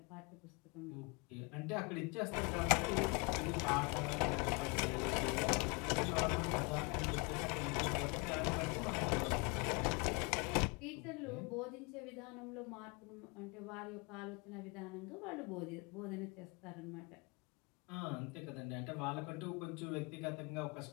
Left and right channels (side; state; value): right; quieter; 30.4 dB